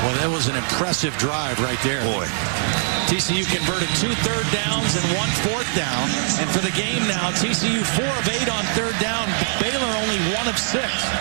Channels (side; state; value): left; silent; digital silence